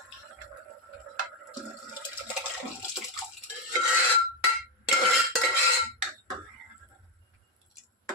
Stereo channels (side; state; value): both; normal; correlation 0.06